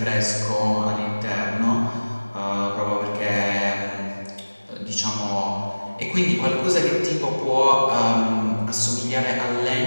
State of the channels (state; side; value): inverted; both; correlation -1.00